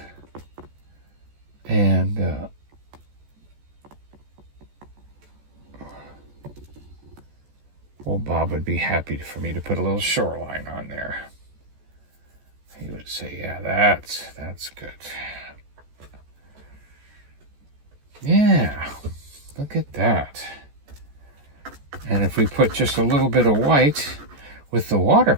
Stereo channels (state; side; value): late; left; 14 ms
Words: And old Bob would be happy for me to put a little shoreline on there. He would say, yeah, that's good. Yeah, look at that. And if we put just a little bit of white with the